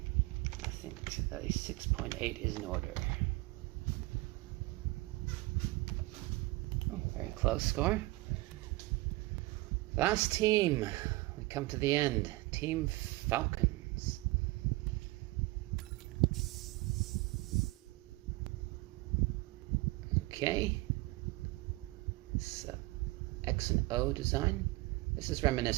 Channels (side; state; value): left; quieter; 21.5 dB